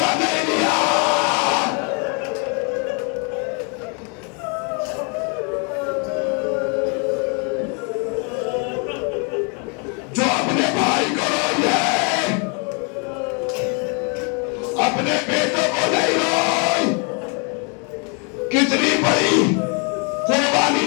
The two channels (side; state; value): right; quieter; 36.3 dB